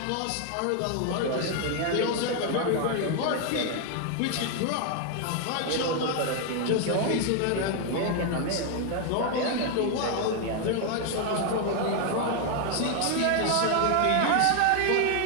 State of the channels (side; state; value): both; different; correlation 0.00